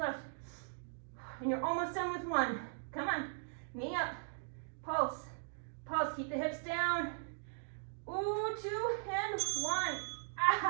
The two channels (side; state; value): left; silent; digital silence